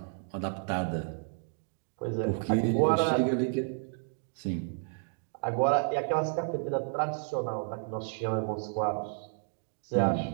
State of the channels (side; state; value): left; silent; 57 dB below the other